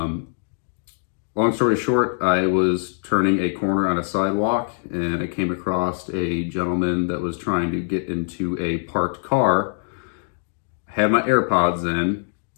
Long story short, I was turning a corner on a sidewalk and I came across a gentleman that was trying to get into a parked car. Had my AirPods in.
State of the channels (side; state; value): right; silent; digital silence